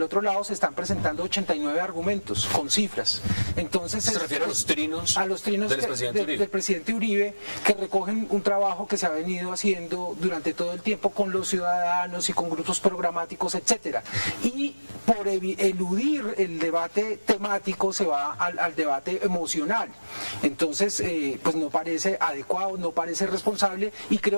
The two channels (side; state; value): both; inverted; correlation -1.00